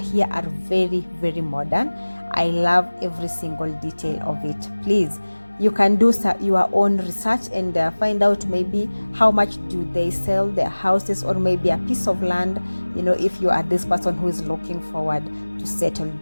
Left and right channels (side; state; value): both; inverted; correlation -1.00